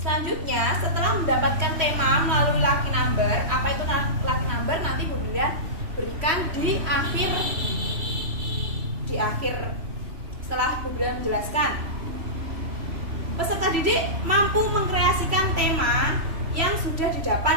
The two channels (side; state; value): left; late; 3.0 ms